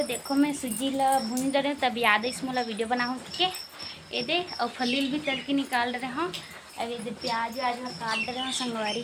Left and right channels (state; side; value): identical; both; correlation 1.00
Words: देखो मैं सूजी ला भून रहे तब याद है इसमें वीडियो बनाऊँ के ये दे और फलील भी तल के निकाल रहे हूँ। अब ये प्याज व्याज में काट रहे हो